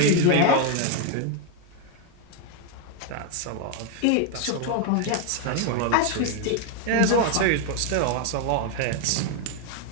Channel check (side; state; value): both; different; correlation 0.01